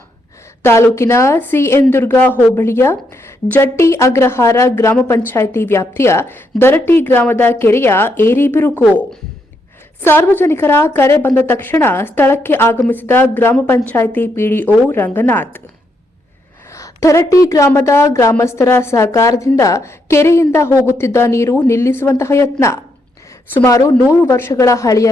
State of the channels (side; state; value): both; normal; correlation 0.78